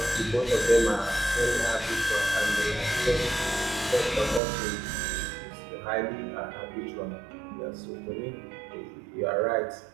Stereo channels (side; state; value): left; drops out; at 4.4 s